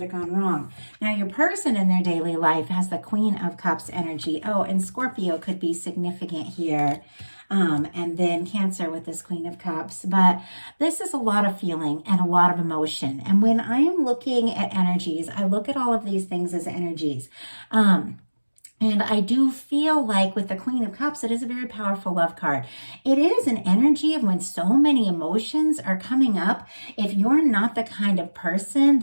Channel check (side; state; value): both; inverted; correlation -1.00